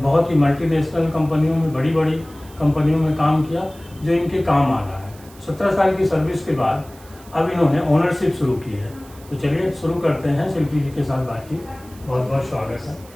बहुत ही मल्टीनेशनल कंपनियों में, बड़ी बड़ी कंपनियों में काम किया, जो इनके काम आ रहा है। 17 साल की सर्विस के बाद अब इन्होंने ओनरशिप शुरू की है। तो चलिए शुरू करते हैं शिल्पी जी के साथ बातचीत। बहुत बहुत स्वागत है।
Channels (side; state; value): right; noise; hiss, 24 dB below the sound